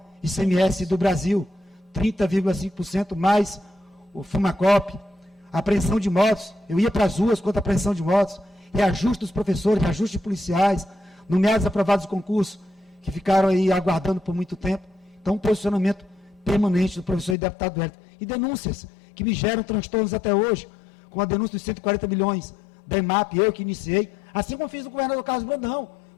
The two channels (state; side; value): drops out; right; at 17.4 s